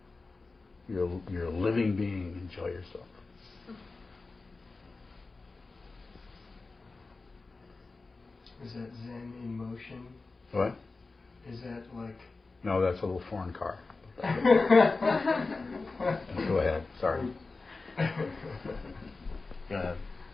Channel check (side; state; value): right; quieter; 3.7 dB